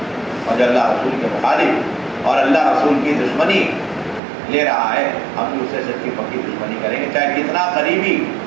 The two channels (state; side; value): drops out; left; at 4.2 s